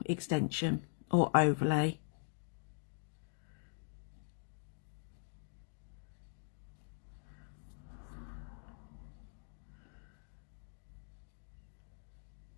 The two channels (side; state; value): right; silent; digital silence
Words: extension or overlay.